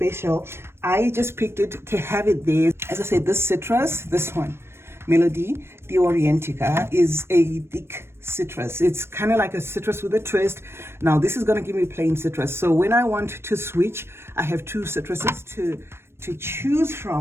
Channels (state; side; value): late; left; 0.12 ms